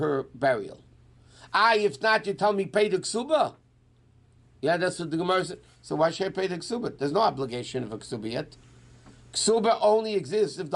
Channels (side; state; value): both; identical; correlation 1.00